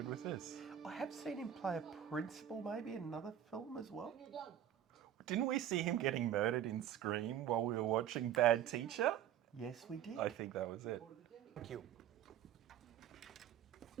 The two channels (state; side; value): quieter; left; 10.4 dB